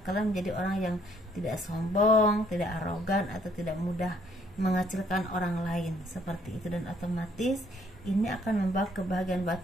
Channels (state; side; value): normal; both; correlation 0.65